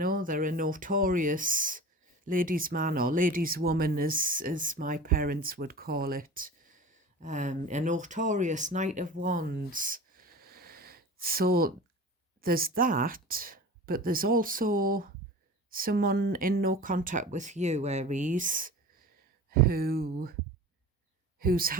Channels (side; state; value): both; normal; correlation 0.36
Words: a notorious ladies' man or ladies' woman, as my parents would call it. A notorious Knight of Wands. So there's that, but there's also someone in no contact with you, Aries, who's